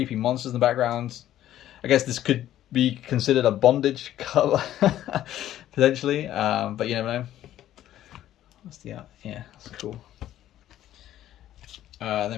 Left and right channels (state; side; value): quieter; right; 12.6 dB